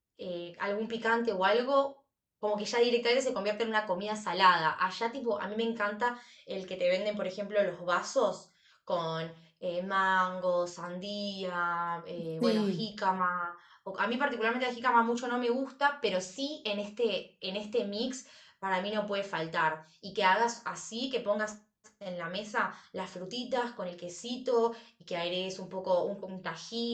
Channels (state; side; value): identical; both; correlation 1.00